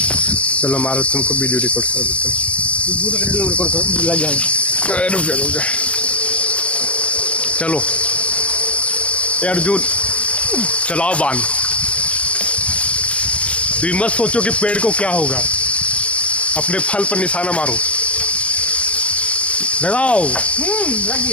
चलो मारो, तुमको वीडियो रिकॉर्ड कर देते हैं। रिकॉर्ड लग जाएगा। रुक जा चलो अर्जुन चलाओ बाण। तुम मत सोचो कि पेड़ को क्या होगा, अपने फल पर निशाना मारो। लगाओ लग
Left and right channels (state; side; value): late; right; 0.062 ms